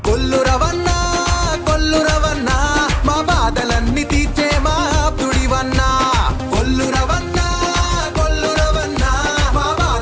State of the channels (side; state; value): both; identical; correlation 1.00